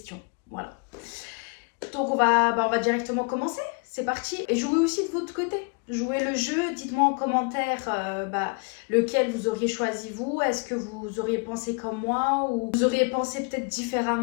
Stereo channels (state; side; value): quieter; right; 34.1 dB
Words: Voilà. Donc, on va directement commencer. C'est parti. Et jouez aussi de votre côté. Jouez le jeu. Dites-moi en commentaire lequel vous auriez choisi vous. Est-ce que vous auriez pensé comme moi ou vous auriez pensé peut-être